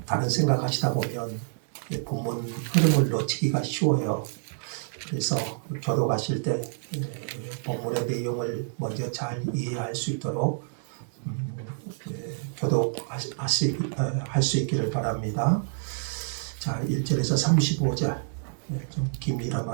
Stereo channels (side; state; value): left; silent; digital silence